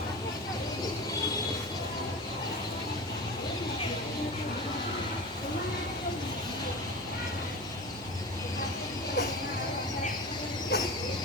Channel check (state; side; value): normal; both; correlation 0.31